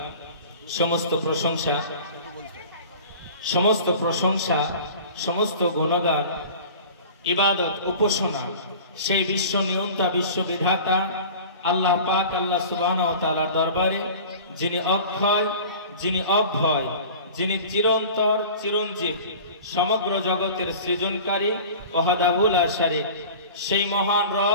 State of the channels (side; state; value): both; inverted; correlation -0.40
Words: সমস্ত প্রশংসা, সমস্ত প্রশংসা, সমস্ত গুণগান, ইবাদত, উপাসনা সেই বিশ্ব নিয়ন্তা, বিশ্ব বিধাতা আল্লাহ পাক আল্লাহ সুবহানাহু ওয়া তাআলার দরবারে, যিনি অক্ষয়, যিনি অভয়, যিনি চিরন্তর চিরঞ্জীব, সমগ্র জগতের সৃজনকারী, ওয়াহদাহু লা শারীক, সেই মহান